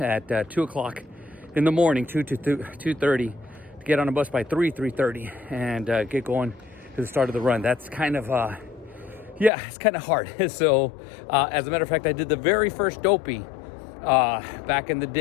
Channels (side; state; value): right; drops out; at 9.5 s